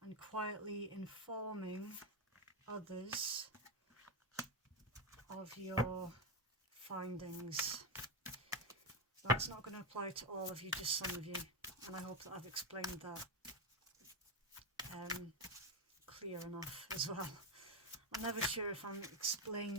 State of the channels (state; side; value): normal; both; correlation 0.07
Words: and quietly informing others of your findings. That's not going to apply to all of you, just some of you. And I hope that I've explained that clear enough as well. I'm never sure if I'm